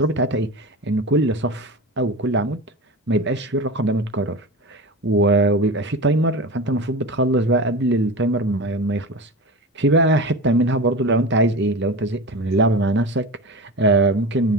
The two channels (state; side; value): normal; both; correlation 0.28